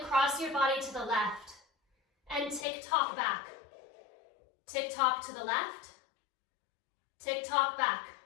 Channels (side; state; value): right; drops out; at 2.7 s